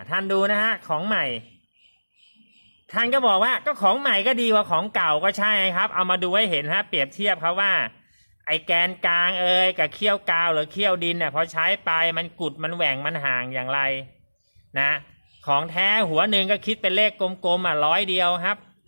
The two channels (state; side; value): inverted; both; correlation -1.00